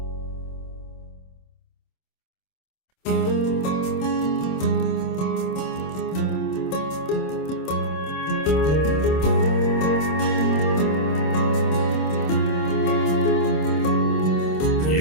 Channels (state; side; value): late; right; 26 ms